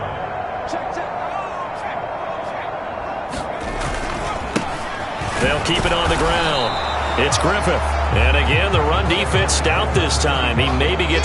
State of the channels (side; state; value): both; identical; correlation 1.00